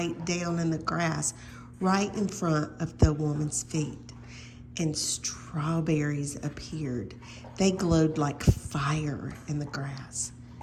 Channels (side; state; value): both; identical; correlation 1.00